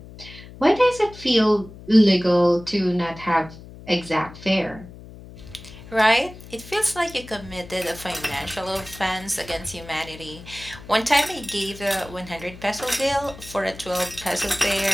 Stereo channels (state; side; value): noise; left; hum, 17 dB below the sound